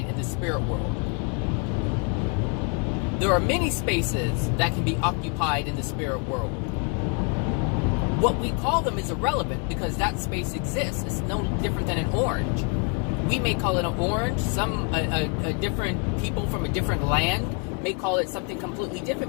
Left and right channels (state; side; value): quieter; right; 37.9 dB